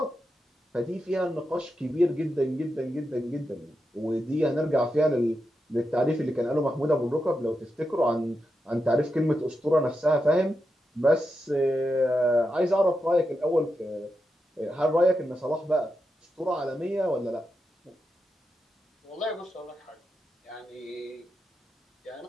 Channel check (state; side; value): normal; both; correlation 0.87